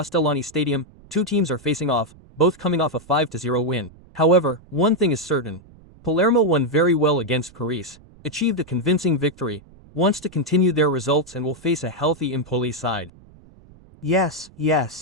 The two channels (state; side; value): noise; right; rumble, 24 dB below the sound